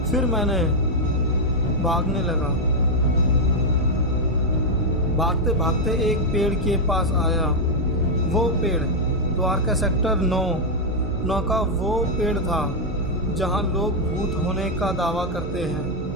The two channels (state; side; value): normal; both; correlation 0.00